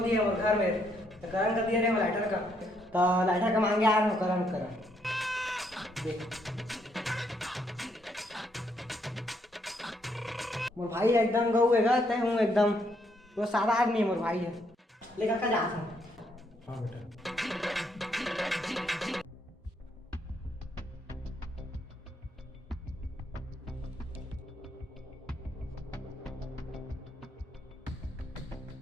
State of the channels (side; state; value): both; normal; correlation 0.73